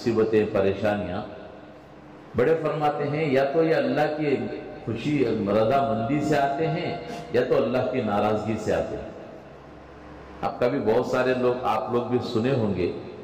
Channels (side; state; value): both; identical; correlation 1.00